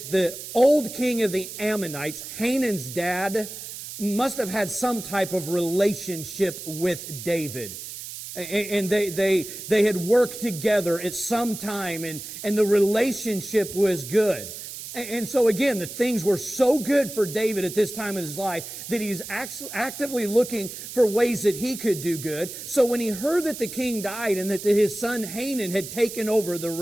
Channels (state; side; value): noise; right; hiss, 10 dB below the sound